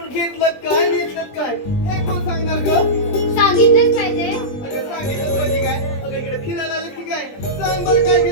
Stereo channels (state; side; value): late; right; 20 ms